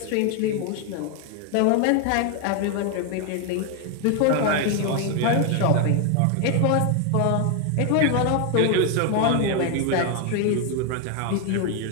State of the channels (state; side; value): different; both; correlation 0.01